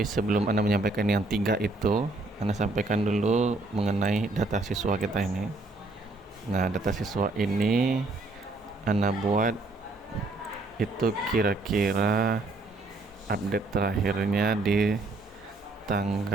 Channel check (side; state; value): left; quieter; 3.1 dB